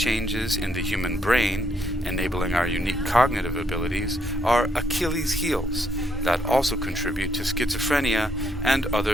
in the human brain, enabling our unique cognitive abilities, are Achilles' heels that also contribute to schizophrenia and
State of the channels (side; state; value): both; normal; correlation 0.74